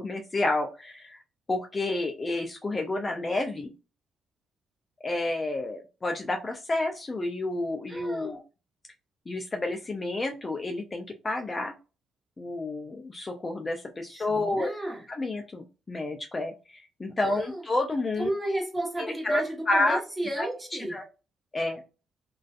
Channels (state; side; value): normal; both; correlation 0.88